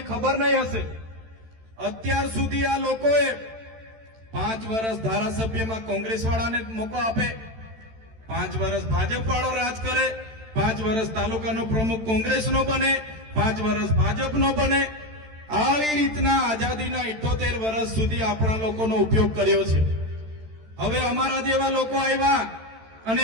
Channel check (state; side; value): late; left; 13 ms